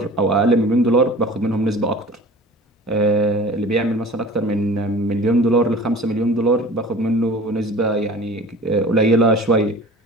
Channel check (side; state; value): both; normal; correlation 0.42